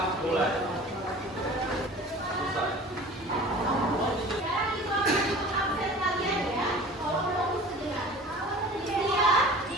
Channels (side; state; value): both; normal; correlation 0.42